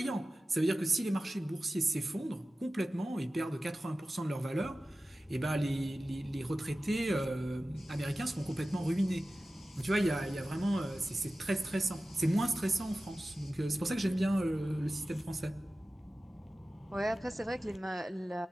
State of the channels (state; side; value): normal; both; correlation 0.95